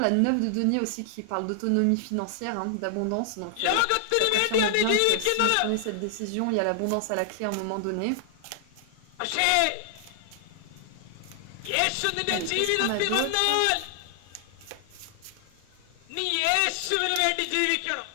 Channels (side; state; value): both; different; correlation 0.00